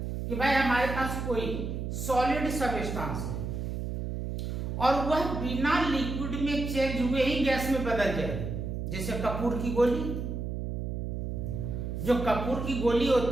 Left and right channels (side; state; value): right; noise; hum, 4 dB below the sound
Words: कि भाई हमारे पास कोई सॉलिड सब्सटेंस है और वह बिना लिक्विड में चेंज हुए ही गैस में बदल जाए। जैसे कपूर की गोली, जो कपूर की गोली